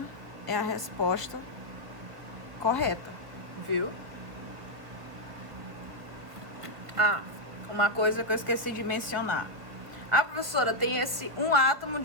é a resposta correta, viu? Ah, uma coisa que eu esqueci de mencionar. A professora tem esse um átomo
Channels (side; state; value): left; late; 1.7 ms